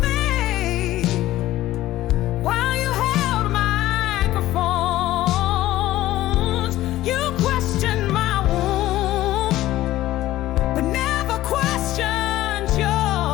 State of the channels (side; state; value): right; quieter; 15.3 dB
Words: faith while you held microphones. You questioned my womb, but never questioned